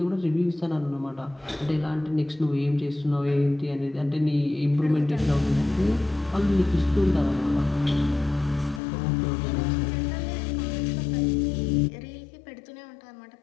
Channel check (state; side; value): drops out; right; at 8.8 s